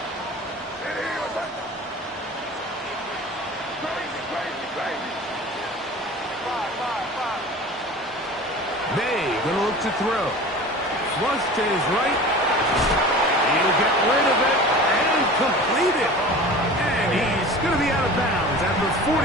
May going to look to throw. Flush to his right. He'll get rid of it and complete it. And he's going to be out of bounds at the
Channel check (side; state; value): both; normal; correlation 0.38